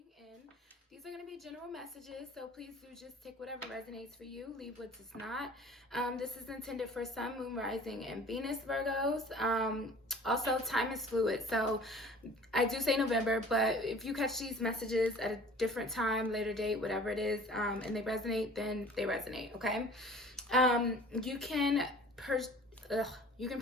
in. These are going to be general messages, so please do just take whatever resonates for you, leave what does not. This is intended for Sun, Moon, Rising, and Venus Virgos. Also, time is fluid, so I do say November, but if you catch these messages at a different time, later date, whatever it is, and they resonate, then they resonate, okay? You can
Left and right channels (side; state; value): both; normal; correlation 0.46